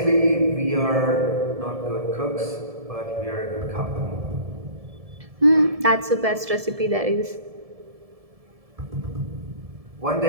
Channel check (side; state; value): left; late; 1.7 ms